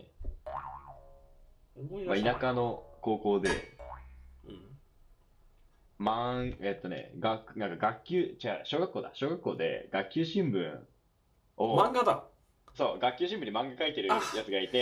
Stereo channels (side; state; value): both; identical; correlation 1.00